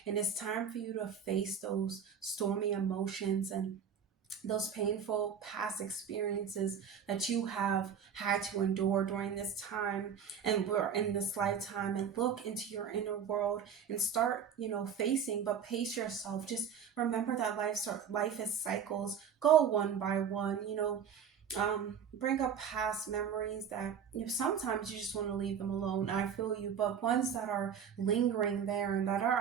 And it's time for you to face those stormy emotions and those painful past experiences that you have had to endure during this time and we're in this lifetime, and look into your inner world and start facing, but pace yourself. Just remember that life is cycles. Go one by one. Bring up past memories that sometimes you just want to leave them alone. I feel you, but ones that are lingering there and that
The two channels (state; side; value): quieter; left; 7.6 dB